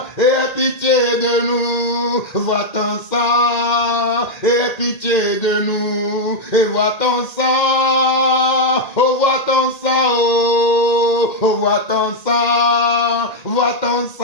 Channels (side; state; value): right; late; 1.8 ms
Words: et aie pitié de nous. Vois ton sang, et aie pitié de nous. Et vois ton sang, oh vois ton sang, oh vois ton sang, vois ton